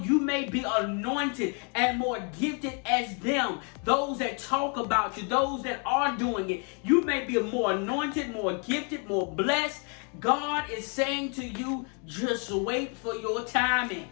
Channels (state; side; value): quieter; right; 38.1 dB